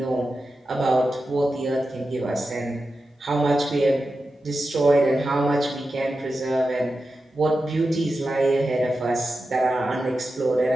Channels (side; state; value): both; normal; correlation 0.91